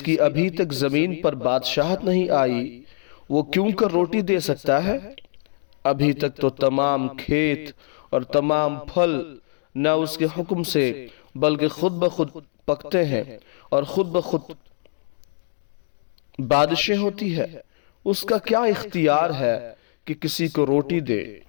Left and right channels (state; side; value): silent; right; digital silence